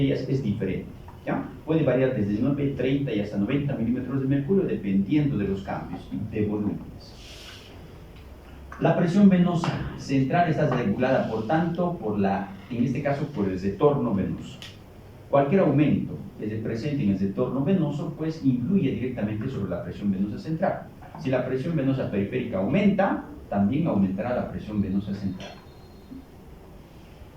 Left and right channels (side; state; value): both; identical; correlation 1.00